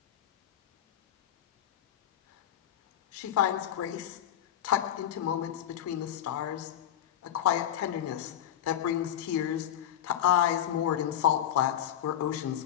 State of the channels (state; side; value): quieter; right; 10.7 dB